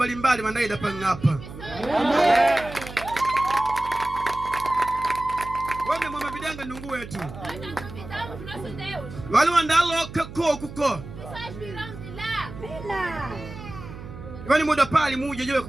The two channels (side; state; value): right; noise; hum, 13 dB below the sound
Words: wandaida pangapa. Wame mama bidanga nungu wetu. Nós não duvidamos do nosso Deus. Wale wandalo kako kuko. Pessoas virão de lá. Wani muda pali muje jewe